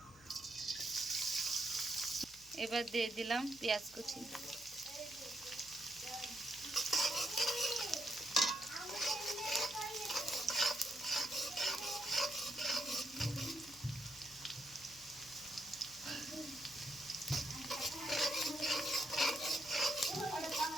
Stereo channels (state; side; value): noise; left; hum, 24 dB below the sound